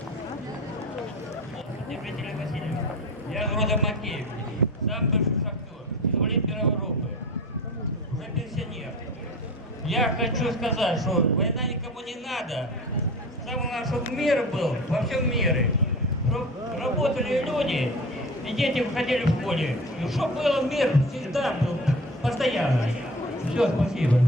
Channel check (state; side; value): normal; both; correlation 0.34